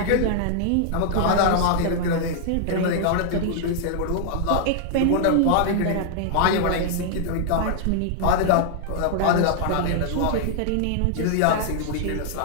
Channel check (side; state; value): both; different; correlation -0.01